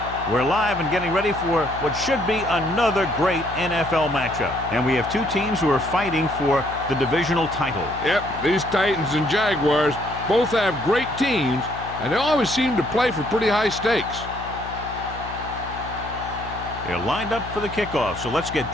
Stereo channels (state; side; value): noise; left; hum, 12 dB below the sound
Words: We're live and getting ready for what should be another great NFL matchup. And we have two teams who are fighting for the divisional title. Yep, these Titans and Jaguars both have great teams, and they always seem to play for pretty high stakes. They're lined up for the kickoff, so let's get